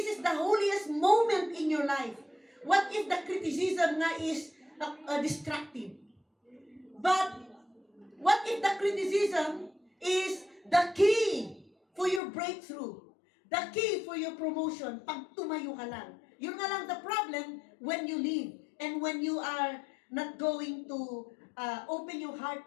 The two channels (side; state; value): right; drops out; at 12.2 s